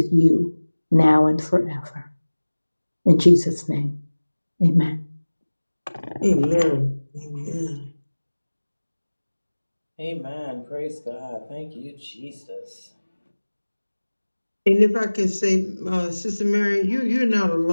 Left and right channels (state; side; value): inverted; both; correlation -1.00